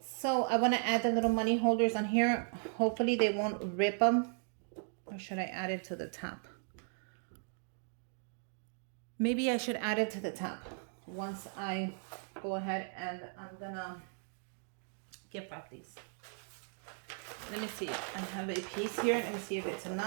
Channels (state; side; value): silent; left; 53 dB below the other